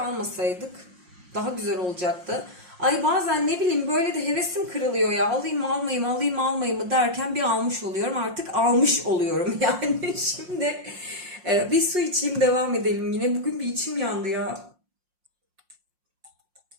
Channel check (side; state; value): left; late; 5.6 ms